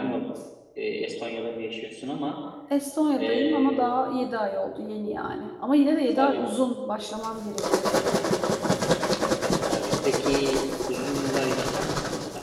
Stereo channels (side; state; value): both; identical; correlation 1.00